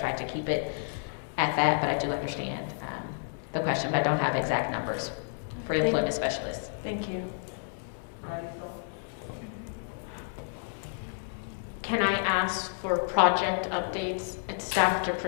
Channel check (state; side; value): silent; right; digital silence